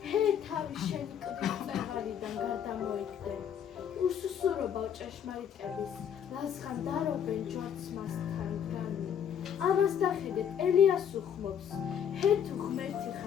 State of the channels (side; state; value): right; quieter; 8.6 dB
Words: ჰე თავი შენი კლდის წეღარიდან გარდამოიგდე. უსუსურობა ჭეშმარიტების, ლაზღან დარობენ ჯვარც მასთან გრანი. ამას დახედეთ, ელიას უხმობს, ჰე თუ ღმერთი